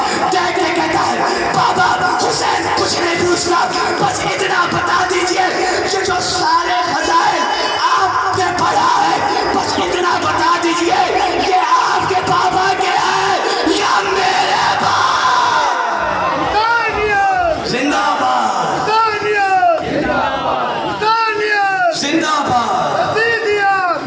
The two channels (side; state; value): both; identical; correlation 1.00